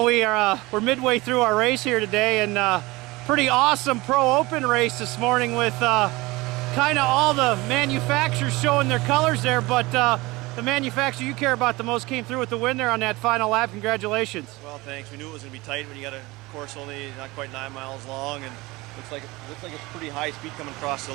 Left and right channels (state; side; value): quieter; left; 21.8 dB